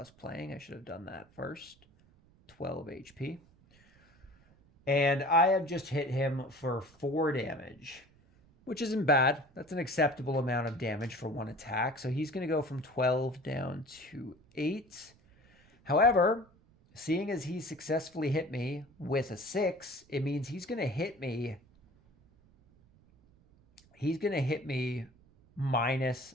playing. I should have done that first. 12 HP. And I have just hit him for 4 damage, which isn't bad. That's an acceptable amount of damage for one attack. So he's going to go from 12 down to 8. However, seeing as he successfully hit me with a 6, it means he's going to hit me. He's going to hit me minus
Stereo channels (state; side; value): noise; right; rumble, 29 dB below the sound